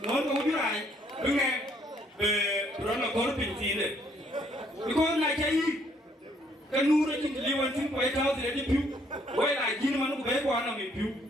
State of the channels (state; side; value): normal; both; correlation 0.66